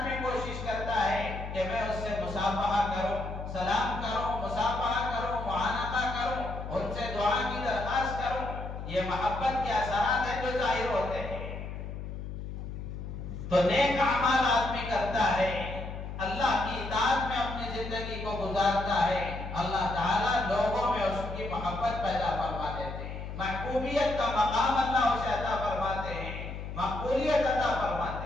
کوشش کرتا ہے کہ میں اس سے مصافحہ کروں، سلام کروں، مصافحہ کروں، معانقہ کروں، ان سے دعا کی درخواست کروں۔ یہ محبت کے اثرات ہیں جو ظاہر ہوتے ہیں۔ تو نیک اعمال آدمی کرتا ہے، اللہ کی اطاعت میں اپنی زندگی کو گزارتا ہے، اللہ تعالیٰ لوگوں میں اس کی محبت پیدا فرما دیتے ہیں، محبوبیت کا مقام اللہ اسے عطا فرماتے ہیں، مقبولیت عطا فرماتے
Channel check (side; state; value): left; noise; hum, 8 dB below the sound